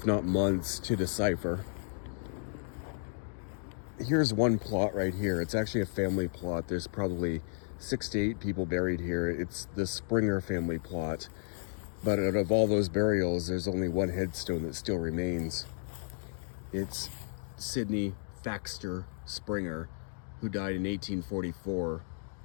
not months, to decipher. Here's one plot right here. It's actually a family plot. There's probably 6 to 8 people buried here. It's the Springer family plot. But out of all those burials, there's only one headstone that still remains. It's Sidney Thaxter Springer, who died in 1844,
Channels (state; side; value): silent; right; digital silence